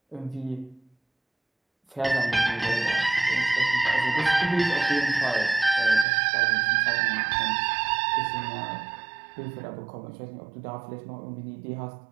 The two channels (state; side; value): drops out; left; at 6.1 s